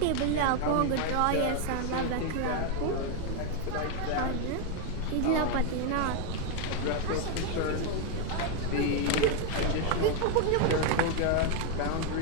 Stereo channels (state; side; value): different; both; correlation 0.01